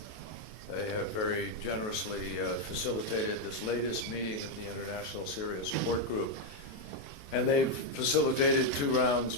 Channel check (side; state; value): right; late; 28 ms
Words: They have very generously facilitated this latest meeting of the International Syria Support Group. And they've facilitated 2 rounds